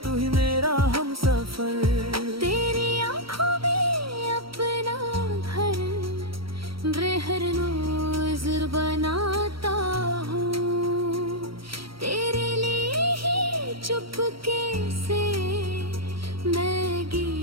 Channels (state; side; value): late; left; 0.75 ms